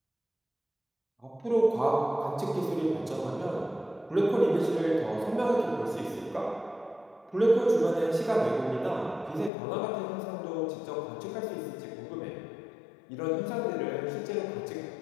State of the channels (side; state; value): right; drops out; at 9.5 s